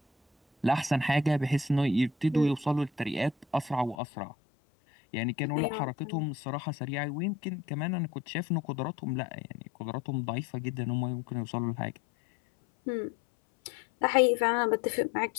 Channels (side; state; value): right; drops out; at 4.0 s